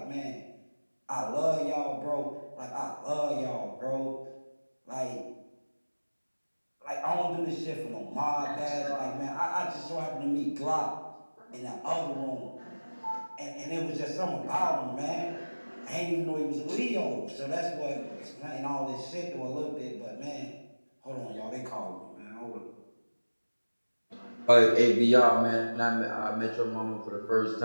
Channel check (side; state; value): both; inverted; correlation -1.00